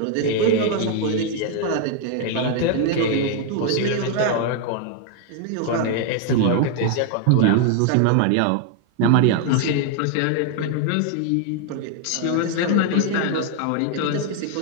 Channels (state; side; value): different; both; correlation 0.00